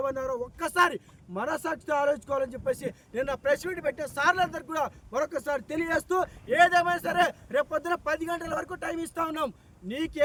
ఒక్కసారి మనసాక్షితో ఆలోచించుకోవాలని చెప్పేసి నిన్న ప్రెస్ మీట్ పెట్టే సార్లందరికీ కూడా మరొకసారి తెలియజేస్తూ, ఏదేమైనా సరే రేపు పొద్దున 10 గంటల వరకు టైం ఇస్తా ఉన్నాం. నీకు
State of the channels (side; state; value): both; identical; correlation 1.00